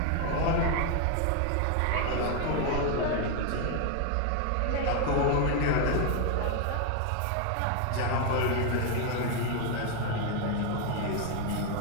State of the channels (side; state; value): both; different; correlation 0.01